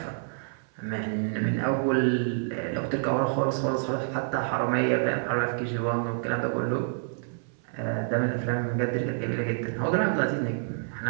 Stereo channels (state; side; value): silent; left; 59 dB below the other